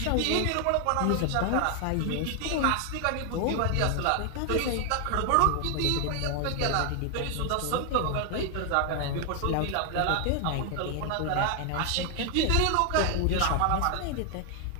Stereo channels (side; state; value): both; different; correlation 0.00